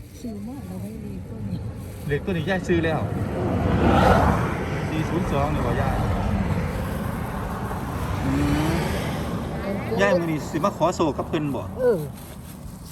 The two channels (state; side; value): identical; both; correlation 1.00